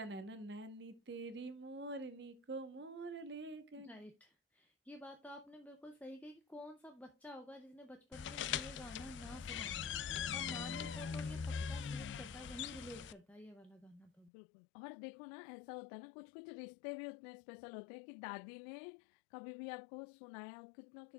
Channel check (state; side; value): drops out; right; at 14.3 s